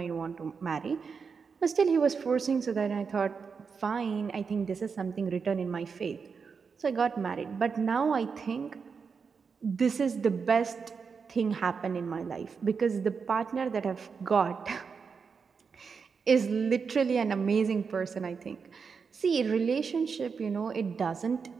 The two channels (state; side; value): quieter; left; 5.6 dB